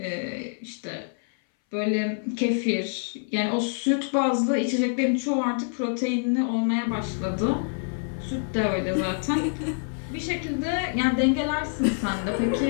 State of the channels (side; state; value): right; silent; 61 dB below the other